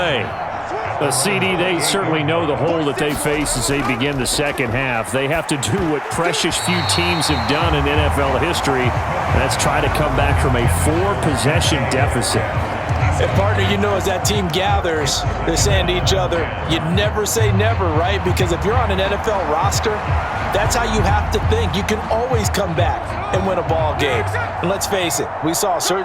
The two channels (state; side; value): identical; both; correlation 1.00